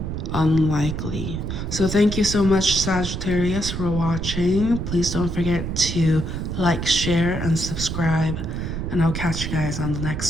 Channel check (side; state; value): right; noise; rumble, 4 dB below the sound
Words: unlikely. So thank you so much, Sagittarius, for watching. Please don't forget to like, share, and subscribe, and I'll catch you guys on the